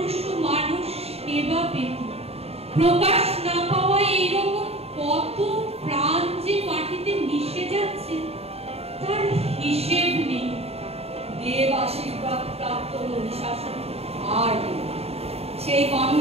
মানুষ সেবা পেত। প্রকাশ না পাওয়া এইরকম কত প্রাণ যে মাটিতে মিশে যাচ্ছে তার হিসেব নেই। দেব আশীর্বাদ প্রাপ্ত মহিষাসুর আর নেই। সেই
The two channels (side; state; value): left; late; 0.29 ms